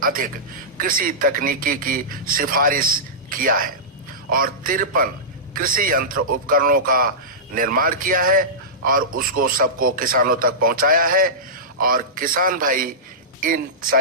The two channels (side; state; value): both; normal; correlation -0.16